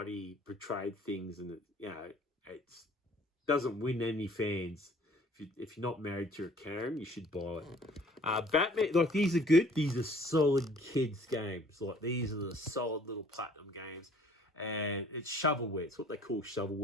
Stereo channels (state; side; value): normal; both; correlation 0.55